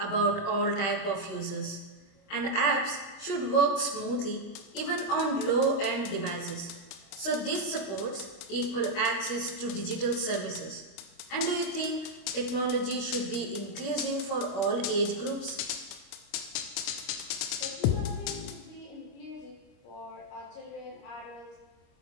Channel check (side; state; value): right; late; 25 ms